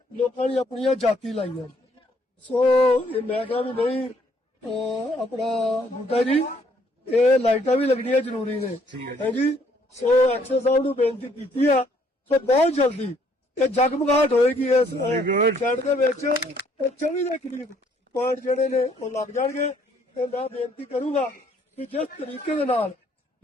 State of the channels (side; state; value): both; normal; correlation 0.66